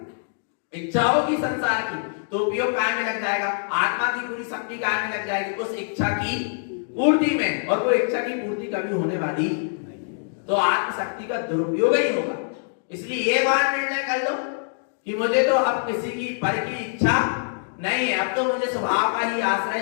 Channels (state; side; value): silent; right; digital silence